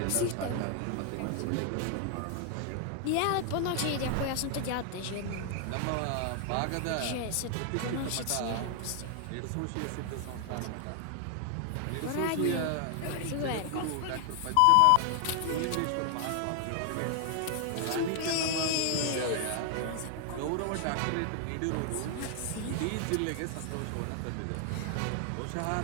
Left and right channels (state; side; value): different; both; correlation 0.00